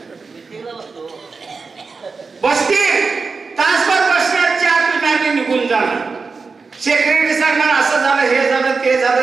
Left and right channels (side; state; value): left; quieter; 4.6 dB